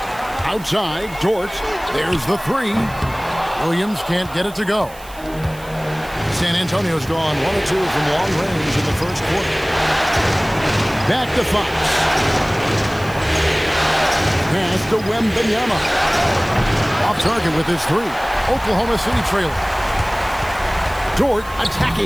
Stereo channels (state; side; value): noise; right; hiss, 20 dB below the sound